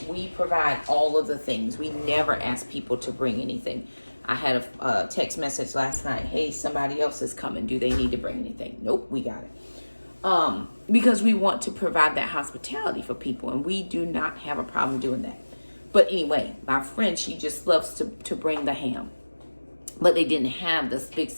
we provide all of the things. We never ask people to bring anything. I had a text message last night. Hey, somebody else is coming. Do they need to bring anything? Nope, we got it. Because we want to provide that hospitality for people, and we do not have a problem doing that. But anyway, my friend, she just loves to bring the ham. But they didn't have the big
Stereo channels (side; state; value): both; inverted; correlation -1.00